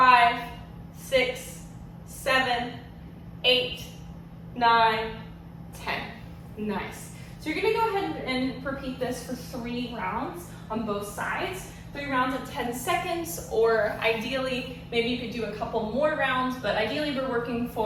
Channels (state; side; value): identical; both; correlation 1.00